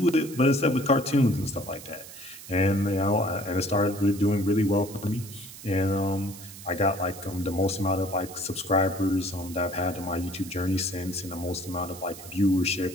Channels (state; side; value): noise; right; hiss, 15 dB below the sound